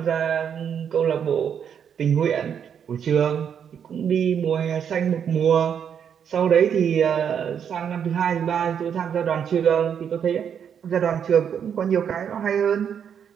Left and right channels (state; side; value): quieter; left; 8.0 dB